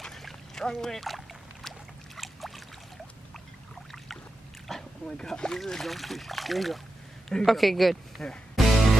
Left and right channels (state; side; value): normal; both; correlation 0.90